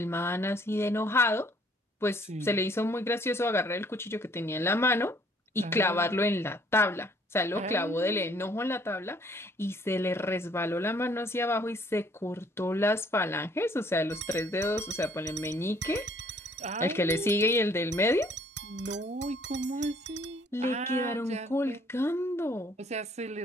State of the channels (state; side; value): normal; both; correlation 0.61